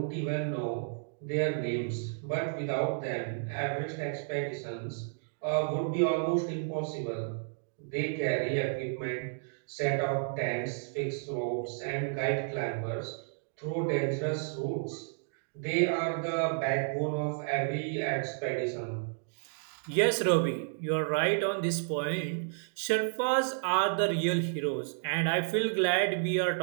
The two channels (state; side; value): silent; left; digital silence